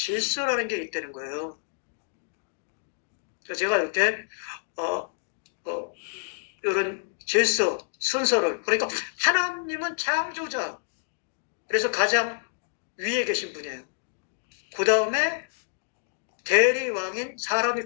게 있다는 거예요. 제가 이렇게 이런 질서, 순서를 그러니까 하나님은 창조자. 그래서 가장 위에 계신 분이에요. 그 다음에 대리왕인 사람이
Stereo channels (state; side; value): silent; right; digital silence